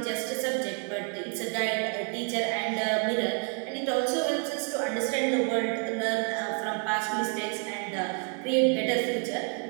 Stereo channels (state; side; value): quieter; left; 35.7 dB